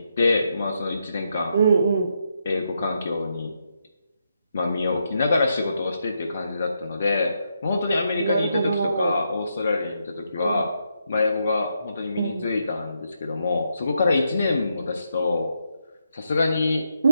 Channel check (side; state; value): both; inverted; correlation -0.80